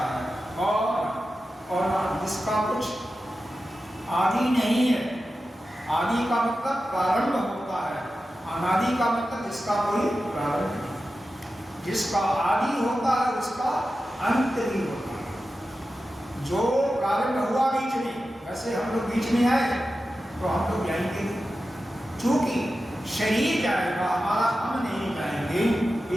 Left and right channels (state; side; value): normal; both; correlation 0.92